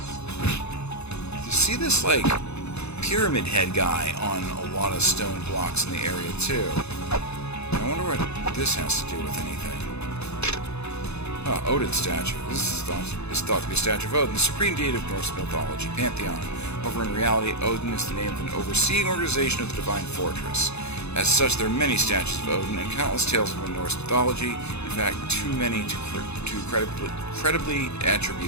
You see this, like, pyramid head guy on a lot of stone blocks in the area, too. I wonder what this has to do with anything. Oh, Odin's statue. This is thought to be a statue of Odin, the supreme deity of Norse mythology, pantheon. However, in reality, Odin is the name of an overseeing organization of the divine fortress. As such, there are many statues of Odin and countless tales from Norse mythology. In fact, too many to credibly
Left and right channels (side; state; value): right; late; 0.80 ms